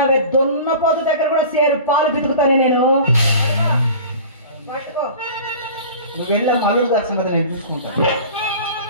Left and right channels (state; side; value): inverted; both; correlation -0.40